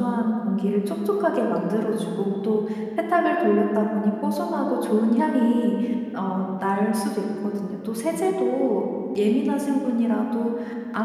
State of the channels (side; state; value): both; identical; correlation 1.00